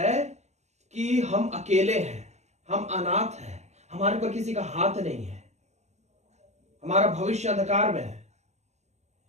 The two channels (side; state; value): left; late; 0.33 ms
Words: कि हम अकेले हैं, हम अनाथ हैं, हमारे पर किसी का हाथ नहीं है, हमारा भविष्य अंधकार में है,